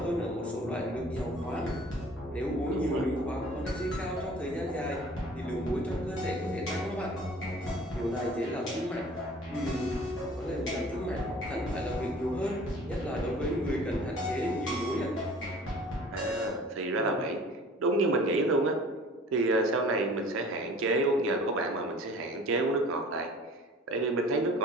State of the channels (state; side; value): normal; both; correlation 0.48